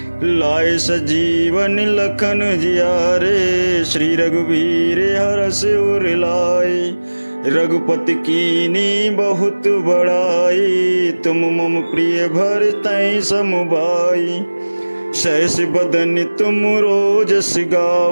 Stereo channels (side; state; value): both; inverted; correlation -1.00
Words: लाए सजीवन लखन जियारे, श्री रघुवीर हरष उर लाए। रघुपति कीनी बहुत बड़ाई, तुम मम प्रिय भरतहि सम भाई। सहस बदन तुम रोजस